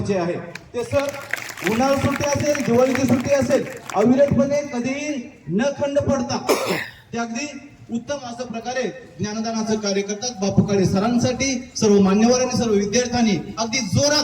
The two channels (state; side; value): identical; both; correlation 1.00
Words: आहे. ते सर उन्हाळी सुट्टी असेल, दिवाळीची सुट्टी असेल, अविरतपणे कधीही न खंड पडता ते अगदी उत्तम अशा प्रकारे ज्ञानदानाचं कार्य करतात. बापू काळे सरांसाठी सर्व मान्यवरांनी, सर्व विद्यार्थ्यांनी अगदी